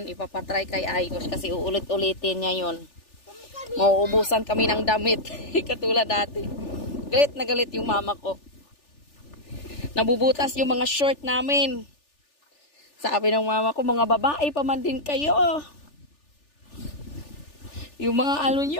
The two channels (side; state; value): right; late; 3.4 ms